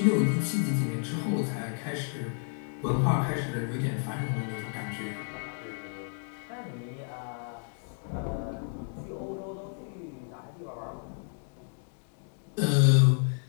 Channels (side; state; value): right; silent; 57 dB below the other